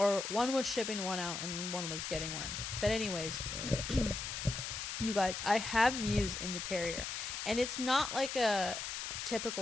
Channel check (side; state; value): left; noise; hiss, 4 dB below the sound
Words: one was shipping one out and one was getting one. But anyways. You guys, I have Muse in the carrier, and it's not like a